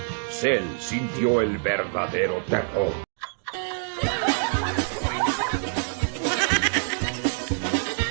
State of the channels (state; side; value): silent; left; 61 dB below the other